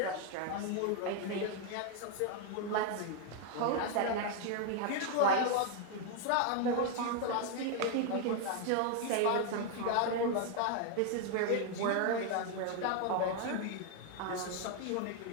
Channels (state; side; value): different; both; correlation 0.00